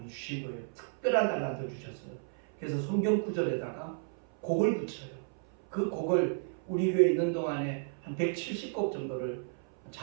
주신 거예요. 특별한 달란트를 주셨어요. 그래서 성경 구절에다가 곡을 붙여요. 그 곡을 우리 교회에 있는 동안에 한 170곡 정도를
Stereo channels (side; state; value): left; silent; 56 dB below the other